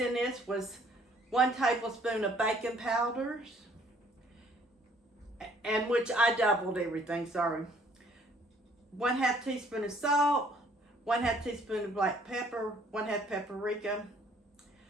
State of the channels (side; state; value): both; normal; correlation 0.61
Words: this was 1 tablespoon of baking powders, and which I doubled everything, sorry. 1/2 teaspoon of salt, 1/2 teaspoon of black pepper, 1/2 paprika.